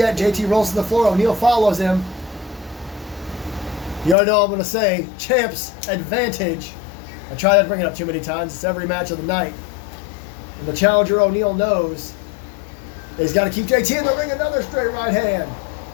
JT rolls to the floor. O'Neill follows him. You already know what I'm going to say. Champ's advantage. I try not to bring it up too many times. It's every match of the night. And the challenger, O'Neal, knows that he's got to keep JT in the ring. Another straight right hand.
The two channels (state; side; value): drops out; right; at 4.2 s